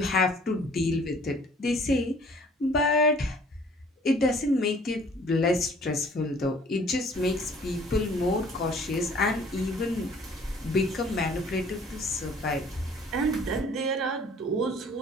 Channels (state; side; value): normal; both; correlation 0.54